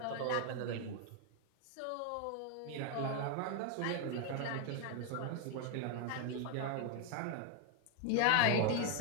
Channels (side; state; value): both; different; correlation 0.01